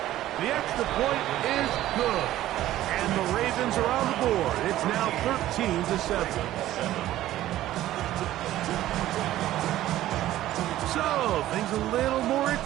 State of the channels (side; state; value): left; quieter; 14.2 dB